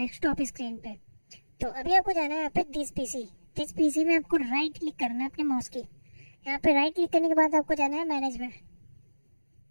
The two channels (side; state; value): both; inverted; correlation -1.00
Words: स्क्रीन पे। तो अभी आपको जाना है यहाँ पे दिस पीसी में आपको राइट क्लिक करना है अपने माउस की। यहाँ पे राइट क्लिक करने के बाद आपको जाना है मैनेज में।